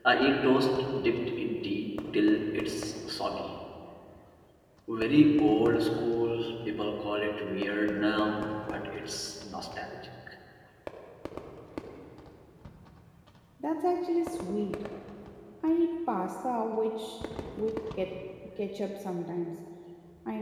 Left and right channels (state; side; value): identical; both; correlation 1.00